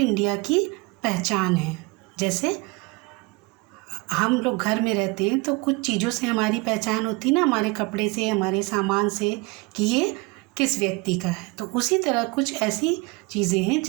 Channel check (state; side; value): quieter; left; 25.2 dB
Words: की पहचान है। जैसे हम लोग घर में रहते हैं तो कुछ चीज़ों से हमारी पहचान होती है ना, हमारे कपड़े से, हमारे सामान से, कि ये किस व्यक्ति का है। तो उसी तरह कुछ ऐसी चीज़ें हैं